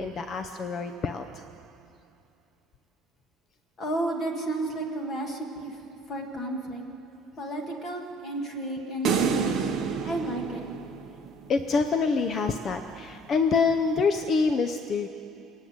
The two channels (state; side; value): normal; both; correlation 0.56